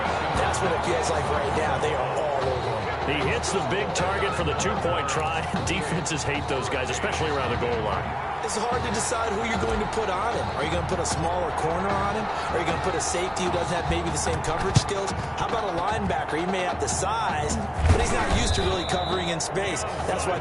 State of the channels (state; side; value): identical; both; correlation 1.00